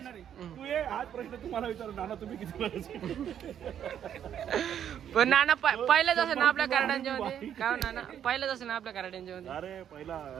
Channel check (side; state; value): left; quieter; 9.5 dB